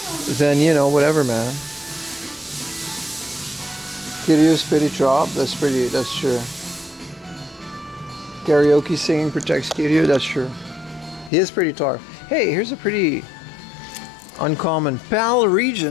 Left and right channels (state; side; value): drops out; right; at 11.3 s